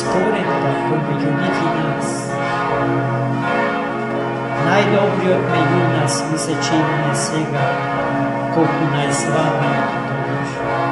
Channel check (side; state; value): both; identical; correlation 1.00